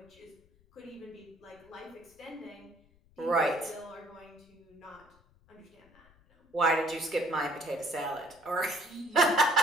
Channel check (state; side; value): noise; left; rumble, 30 dB below the sound